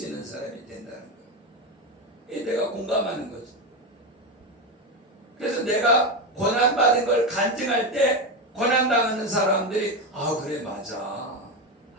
있는 사람이 된다는 거예요. 이게 내가 공감하는 거죠. 그래서 내가 고난받은 걸 간증할 때 고난당하는 사람들이 그래 맞아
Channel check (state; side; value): normal; both; correlation 0.14